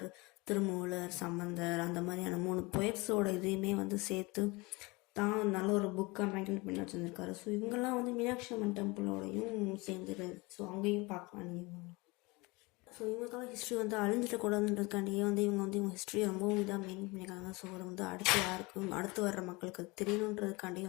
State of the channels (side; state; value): right; quieter; 24.9 dB